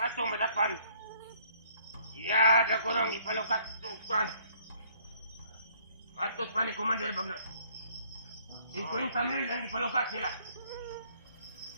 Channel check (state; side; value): inverted; both; correlation -0.62